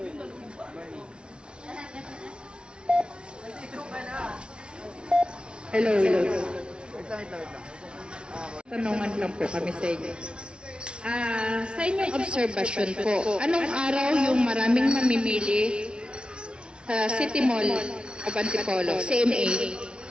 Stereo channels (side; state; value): left; late; 0.056 ms